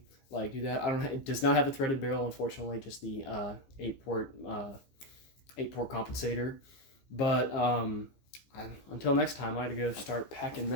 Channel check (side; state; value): right; late; 15 ms